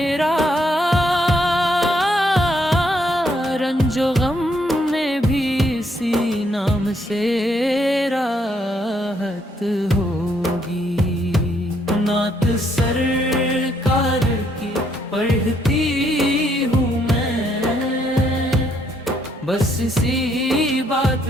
रंजो गम में भी इसी नाम से राहत होगी। नात सरकार की पढ़ती हूँ मैं, बस इसी बात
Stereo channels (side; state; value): both; normal; correlation 0.72